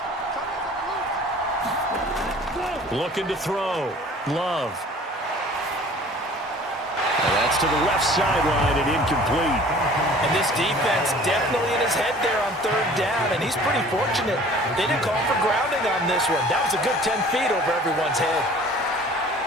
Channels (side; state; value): both; normal; correlation 0.48